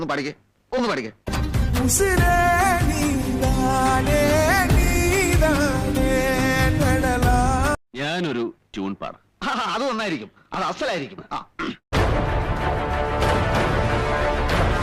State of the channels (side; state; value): both; identical; correlation 1.00